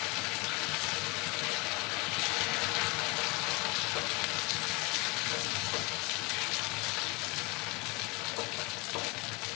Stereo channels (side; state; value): right; quieter; 27.0 dB